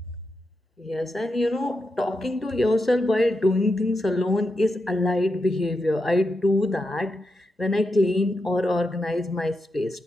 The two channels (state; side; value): normal; both; correlation 0.86